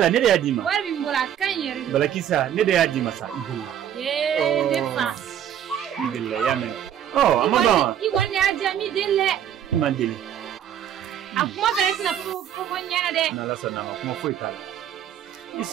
ne da yadima warbi mbora kan yere balakisa ne da yadima sa idilla de fa idilla yamen amaba iwone ajami delle imandeli akuma fere sina ko nyana de na la sana kuma foi kala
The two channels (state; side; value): quieter; left; 9.9 dB